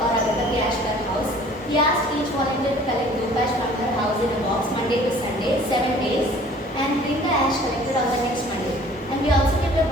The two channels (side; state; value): both; normal; correlation 0.51